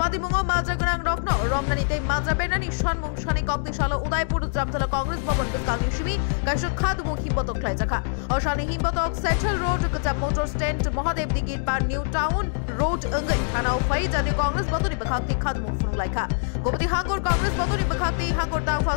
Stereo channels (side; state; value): right; silent; digital silence